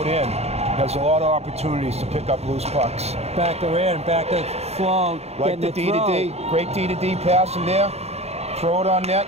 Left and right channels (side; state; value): left; late; 0.31 ms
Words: in has a lot of opportunities to pick up loose pucks. Back to in, back to Sloan. Like the D-to-D, great D-to-D pass in there. Throw it on net.